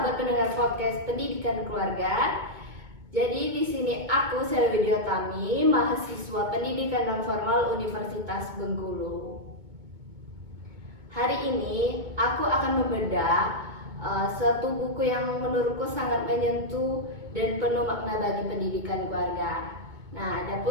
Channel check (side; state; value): left; late; 2.2 ms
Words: pendengar podcast Pendidikan Keluarga. Jadi di sini aku Selvi Diotami, mahasiswa Pendidikan Non Formal Universitas Bengkulu. Hari ini aku akan membedah suatu buku yang menurutku sangat menyentuh dan penuh makna bagi pendidikan keluarga. Nah,